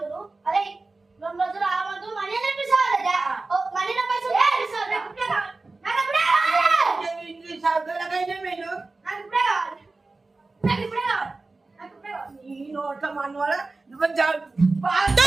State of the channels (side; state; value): left; quieter; 3.5 dB